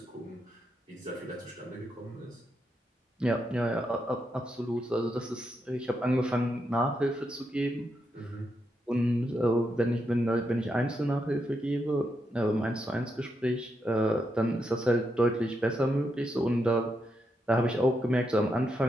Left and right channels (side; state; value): both; normal; correlation 0.83